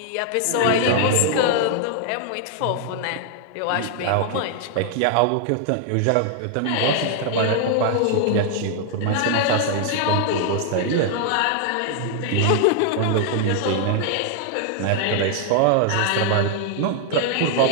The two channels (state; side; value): different; both; correlation 0.00